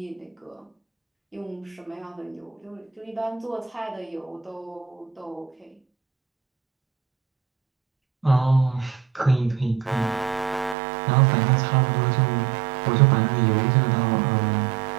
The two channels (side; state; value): left; drops out; at 10.8 s